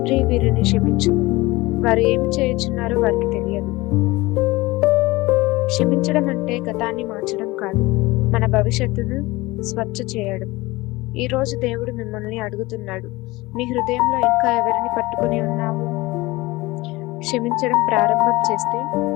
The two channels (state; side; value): quieter; right; 20.9 dB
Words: వీరిని క్షమించు, వారు ఏమి చేయుచున్నారో వారికి తెలియదు. క్షమించడం అంటే గతాన్ని మార్చడం కాదు, మన భవిష్యత్తును స్వచ్ఛ చేయడం. ఈ రోజు దేవుడు మిమ్మల్ని అడుగుతున్నాడు, మీ హృదయంలో ఇంకా ఎవరిని పట్టుకుని ఉన్నావు? క్షమించడం ప్రారంభం చేస్తే